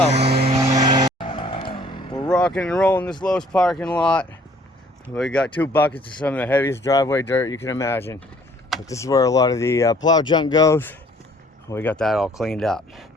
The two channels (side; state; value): both; normal; correlation 0.58